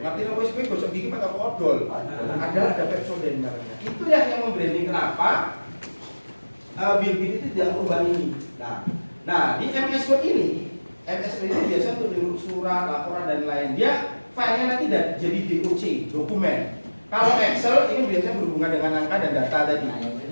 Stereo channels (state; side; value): inverted; both; correlation -1.00